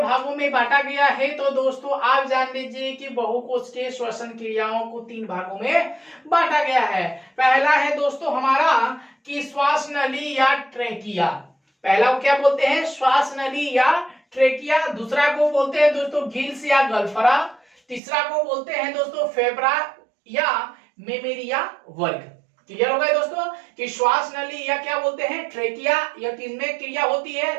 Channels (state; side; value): drops out; left; at 18.0 s